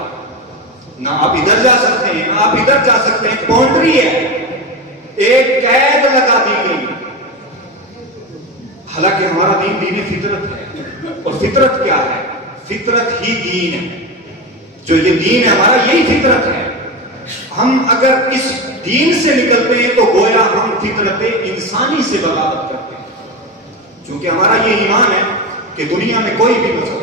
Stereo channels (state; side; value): normal; both; correlation 0.20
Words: نہ آپ ادھر جا سکتے ہیں نہ آپ ادھر جا سکتے ہیں، باؤنڈری ہے، ایک قید لگا دی گئی۔ حالانکہ ہمارا دین دین فطرت ہے، اور فطرت کیا ہے؟ فطرت ہی دین ہے، جو یہ دین ہے ہمارا یہی فطرت ہے۔ ہم اگر اس دین سے نکلتے ہیں تو گویا ہم فطرت انسانی سے بغاوت کرتے ہیں، کیونکہ ہمارا یہ ایمان ہے کہ دنیا میں کوئی بھی مسئلہ،